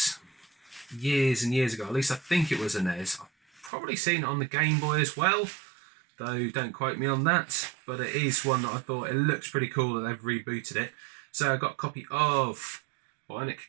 years and years ago. At least I think it was a NES. I've probably seen it on the Game Boy as well, though don't quote me on that. But it is one that I thought it looks pretty cool that they've rebooted it. So I got a copy of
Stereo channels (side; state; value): left; drops out; at 3.7 s